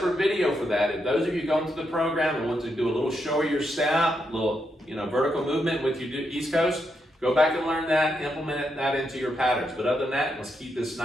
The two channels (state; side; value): normal; both; correlation 0.82